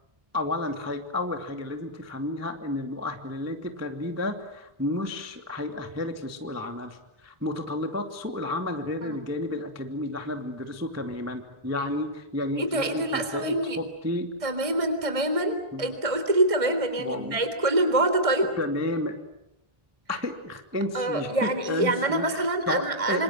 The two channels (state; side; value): late; left; 1.6 ms